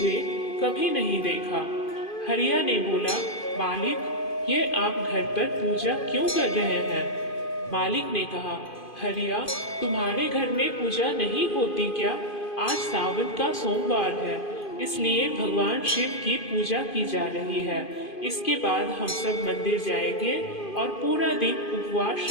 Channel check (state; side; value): late; right; 2.5 ms